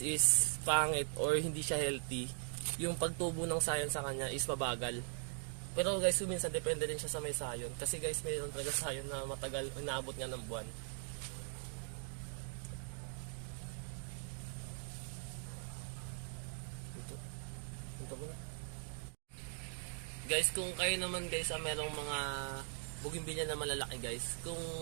is pangit or hindi siya healthy, yung pagtubo ng sayon sa kanya is mabagal. Pero guys, minsan depende rin siya sa may sayon. Kasi guys, mayroon talaga sayon na matagal, inaabot nga ng buwan. Guys, kung kayo naman guys merong mga bougainvillea na malalaki guys, kung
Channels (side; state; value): left; silent; 51 dB below the other